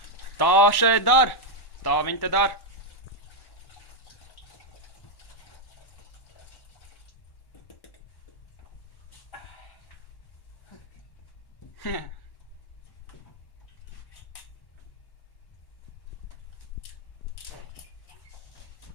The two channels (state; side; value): late; right; 1.1 ms